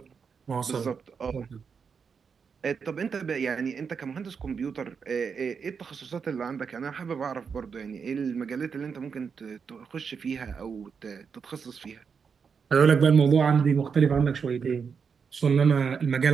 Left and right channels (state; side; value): quieter; left; 6.1 dB